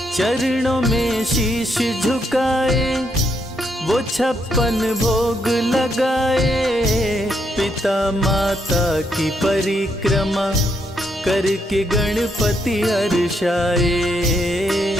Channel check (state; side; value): normal; both; correlation 0.77